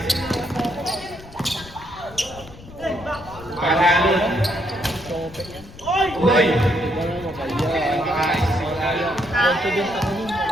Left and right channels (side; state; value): left; noise; rumble, 18 dB below the sound